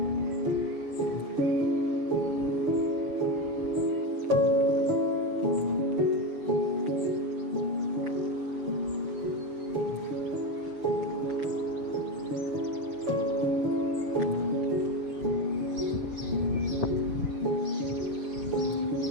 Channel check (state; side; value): late; left; 6.9 ms